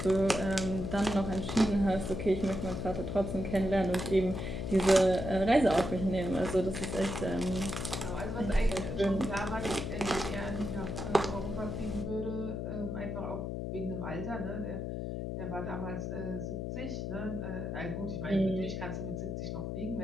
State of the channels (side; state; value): left; noise; hum, 4 dB below the sound